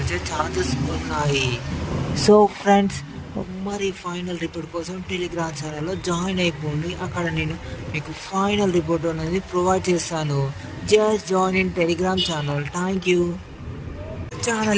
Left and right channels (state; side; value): identical; both; correlation 1.00